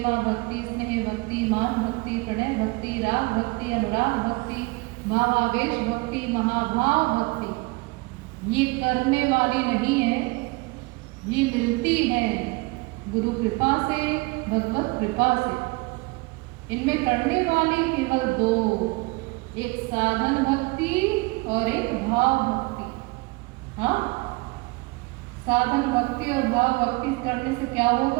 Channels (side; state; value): left; quieter; 26.0 dB